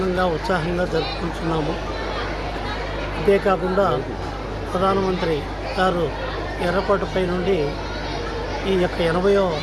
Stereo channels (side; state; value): both; identical; correlation 1.00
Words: ఉత్సాహంగా జరుపుకుంటున్నాము. అంతేకాకుండా ప్రధానమంత్రి గారు ఎర్రకోటపై నుండి ఈ యొక్క 80వ